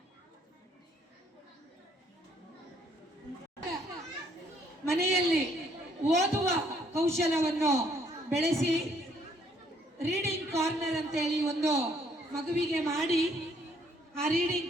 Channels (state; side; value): normal; both; correlation 0.66